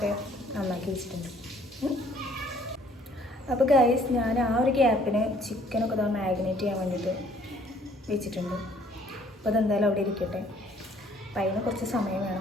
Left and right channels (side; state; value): both; normal; correlation 0.60